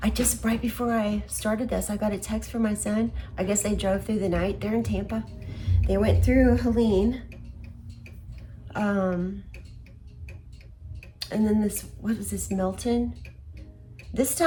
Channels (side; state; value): both; identical; correlation 1.00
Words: right before I started this, I got a text from my son. I guess they drove through the night. They're in Tampa. They went through Helene. And then what was this, Milton? This